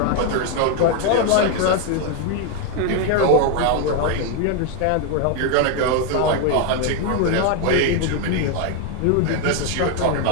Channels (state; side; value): different; both; correlation 0.01